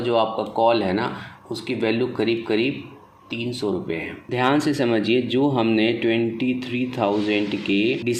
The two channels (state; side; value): identical; both; correlation 1.00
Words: आपका कॉल है ना, उसकी वैल्यू करीब करीब 300 रुपये है। ध्यान से समझिए, जो हमने 23,000 के